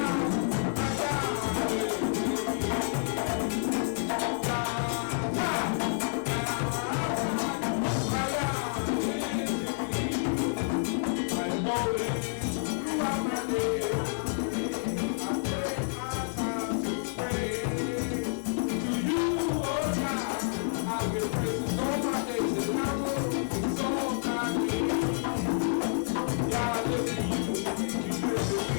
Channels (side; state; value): right; silent; 58 dB below the other